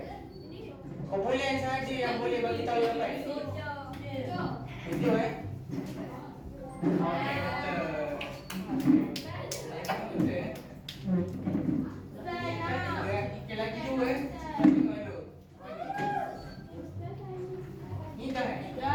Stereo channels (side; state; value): both; identical; correlation 1.00